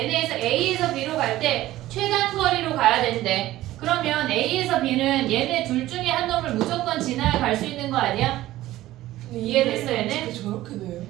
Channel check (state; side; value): quieter; left; 15.5 dB